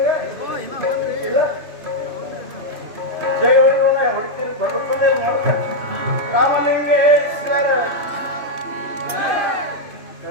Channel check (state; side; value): late; left; 3.0 ms